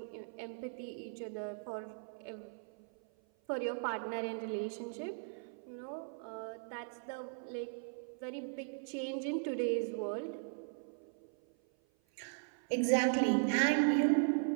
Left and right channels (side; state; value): left; silent; 52 dB below the other